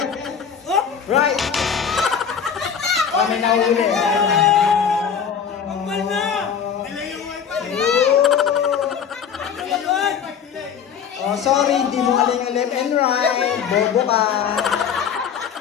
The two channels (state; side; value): quieter; right; 7.4 dB